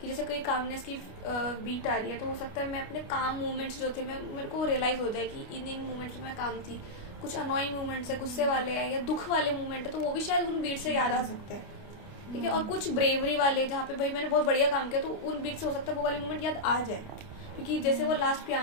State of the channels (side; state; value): right; late; 29 ms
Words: कि जैसे कोई कामनेस की बीट आ रही है, तो हो सकता है मैं अपने काम मूवमेंट्स जो थे मेरे को रियलाइज हो जाए कि इन मूवमेंट्स में मैं काम थी। कुछ अनोइंग मूवमेंट्स है, गुस्से वाले हैं या दुख वाले मूवमेंट है, तो वो भी शायद उन बीट से याद आ सकते हैं, ठीक है। और कुछ ब्रेवरी वाले जहाँ पे भाई मैंने बहुत बढ़िया काम किया, तो उन बीट से हो सकता है वो वाले मूवमेंट याद आ जाए। क्योंकि जैसे वो लास्ट